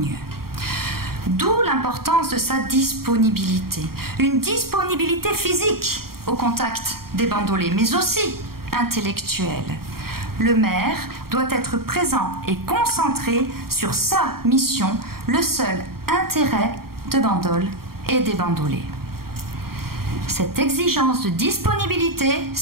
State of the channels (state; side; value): late; left; 0.93 ms